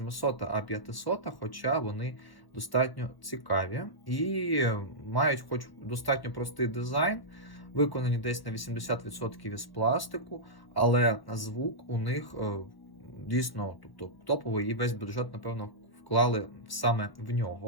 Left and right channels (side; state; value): right; late; 1.0 ms